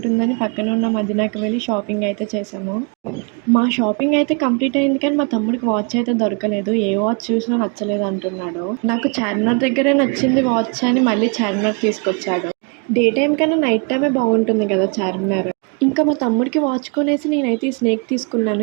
పక్కన ఉన్న మదీనాకి వెళ్ళి షాపింగ్ అయితే చేశాము. మా షాపింగ్ అయితే కంప్లీట్ అయింది కానీ మా తమ్ముడికి వాచ్ అయితే దొరకలేదు. ఏ వాచ్ చూసినా నచ్చలేదు అంటున్నాడు. నాకు చార్మినార్ దగ్గరే నచ్చింది వాచ్ అని మళ్ళీ చార్మినార్ తీసుకొచ్చాడు. డే టైమ్ కన్నా నైట్ టైమే బాగుంటుంది కదా చార్మినార్. మా తమ్ముడికి వాచ్ కొనేసి నేనైతే ఈ స్నేక్ తీసుకున్నాను.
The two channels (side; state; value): left; quieter; 35.0 dB